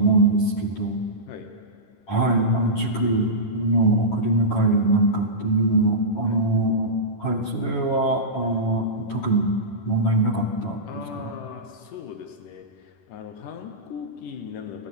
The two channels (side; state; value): right; late; 10 ms